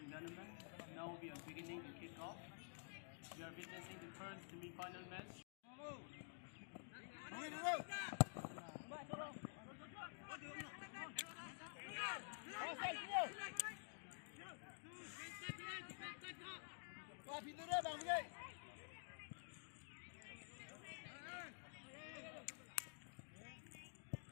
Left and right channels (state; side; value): silent; right; digital silence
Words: tournament. Now we are beginning the kickoff. We are witnessing the first semi-final match.